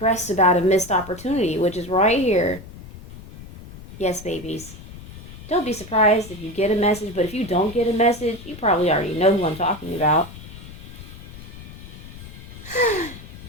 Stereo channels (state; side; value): noise; left; rumble, 15 dB below the sound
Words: about a missed opportunity, which is right here. Yes, babies. Don't be surprised if you get a message, but if you don't get a message, you probably already know who I'm talking about.